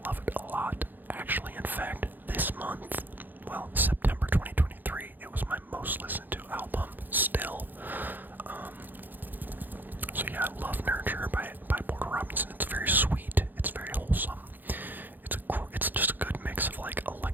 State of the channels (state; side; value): late; left; 0.088 ms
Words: love it a lot. Actually, in fact, this month, well, September 2023, it was my most listened to album still. So yeah, I love Nurture by Porter Robinson. It's very sweet. It's very wholesome. It's just a good mix of like